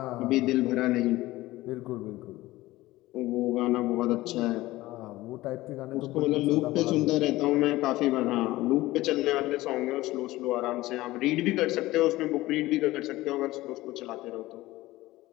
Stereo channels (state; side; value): quieter; right; 17.9 dB